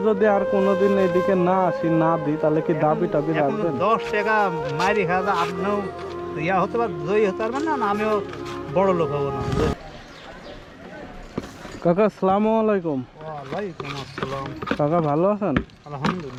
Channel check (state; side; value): identical; both; correlation 1.00